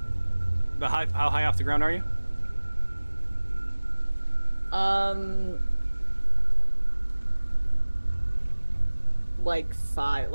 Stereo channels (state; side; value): inverted; both; correlation -1.00